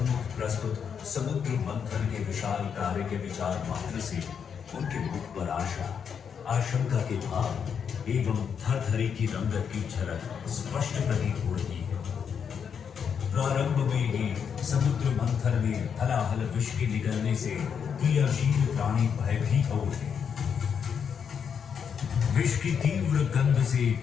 प्रस्तुत समुद्र मंथन के विशाल कार्य के विचार मात्र से उनके मुख पर आशा, आशंका के भाव एवं थरथरी की रंगत की झलक स्पष्ट प्रतीत हो रही है। प्रारंभ में ही समुद्र मंथन में हलाहल विष के निकलने से क्रियाशील प्राणी भयभीत हो उठे। विष की तीव्र गंध से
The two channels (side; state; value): right; quieter; 7.1 dB